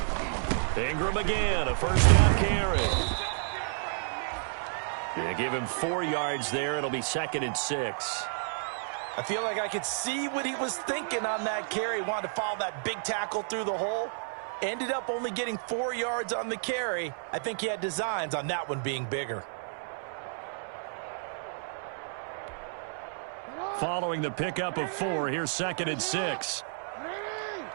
Ingram again, a first down carry. They give him 4 yards there. It'll be 2nd and 6. I feel like I could see what he was thinking on that carry. Wanted to follow that big tackle through the hole. Ended up only getting 4 yards on the carry. I think he had designs on that one being bigger. Following the pickup of 4, here's 2nd and 6.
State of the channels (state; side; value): silent; left; 57 dB below the other